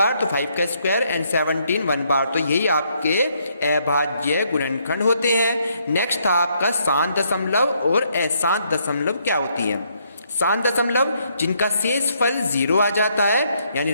तो 5 का स्क्वायर एंड 17 1 बार, तो यही आपके अभाज्य गुणनखंड होते हैं। नेक्स्ट था आपका शांत दशमलव और अशांत दशमलव क्या होती है। शांत दशमलव जिनका शेषफल 0 आ जाता है, यानी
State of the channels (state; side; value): inverted; both; correlation -0.72